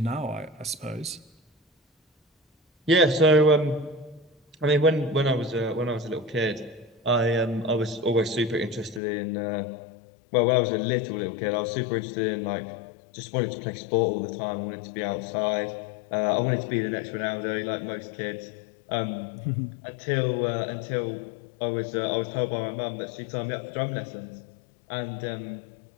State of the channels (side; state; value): right; drops out; at 9.0 s